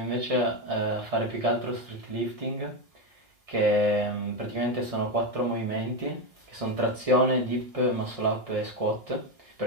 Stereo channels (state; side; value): late; left; 1.7 ms